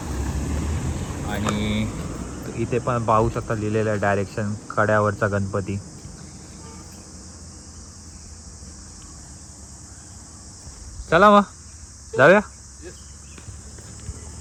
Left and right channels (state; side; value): identical; both; correlation 1.00